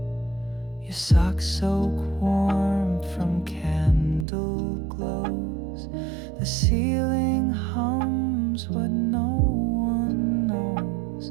Your socks soak warm from candle glows. The ceiling hums what no one knows.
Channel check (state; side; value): drops out; left; at 4.2 s